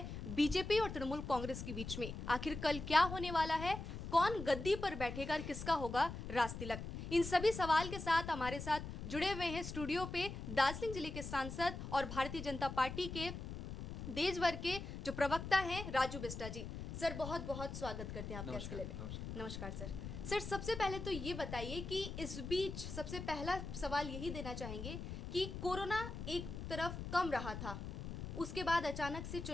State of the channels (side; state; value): left; noise; rumble, 7 dB below the sound